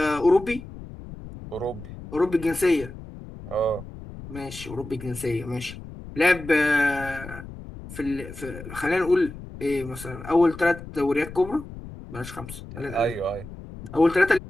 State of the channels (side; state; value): left; noise; rumble, 14 dB below the sound